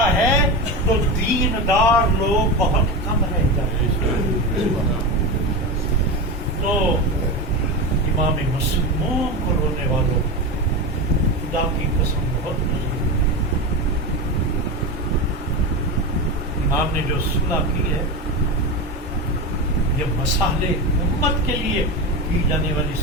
ہے تو دیندار لوگ بہت کم رہ جاتے ہیں. تو امام مسموم کو رونے والوں خدا کی قسم بہت نہیں. امام نے جو صلح کی ہے یہ مصالح امت کے لیے کی جانے والی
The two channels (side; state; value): both; normal; correlation 0.20